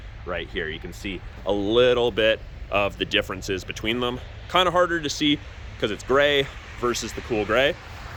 right here. You can see a little bit of the differences between them. Kind of harder to see because it's gray versus the cool gray.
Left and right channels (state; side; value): identical; both; correlation 1.00